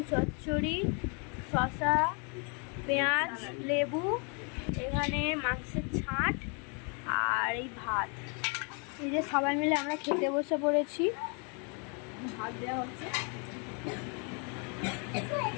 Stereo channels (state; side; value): quieter; right; 36.4 dB